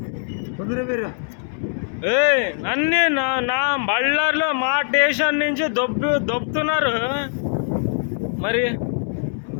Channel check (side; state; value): right; silent; 62 dB below the other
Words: నన్ను నా బళ్ళారిలో మా స్టేషన్ నుంచి దొబ్బుతున్నారు. మరి